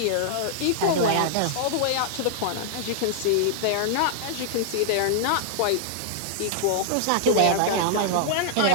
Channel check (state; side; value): different; both; correlation -0.01